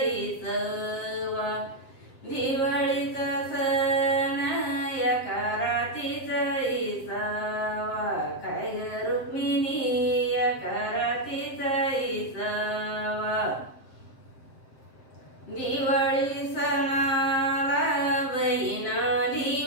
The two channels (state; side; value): late; right; 7.6 ms